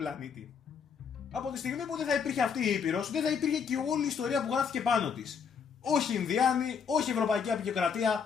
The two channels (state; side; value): quieter; right; 6.6 dB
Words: Από τη στιγμή που δεν θα υπήρχε αυτή η Ήπειρος, δεν θα υπήρχε και όλη η ιστορία που γράφτηκε πάνω της. Όχι Ινδιάνοι, όχι Ευρωπαϊκή